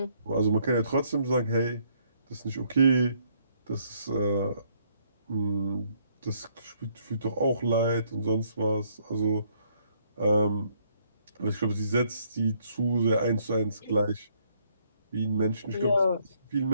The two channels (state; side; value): inverted; both; correlation -0.68